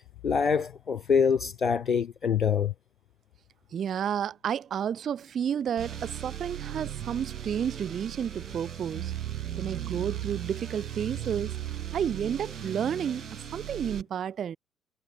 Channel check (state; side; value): normal; both; correlation 0.61